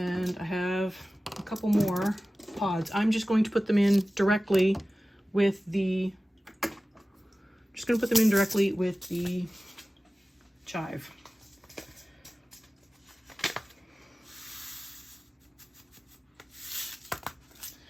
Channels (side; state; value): both; normal; correlation 0.96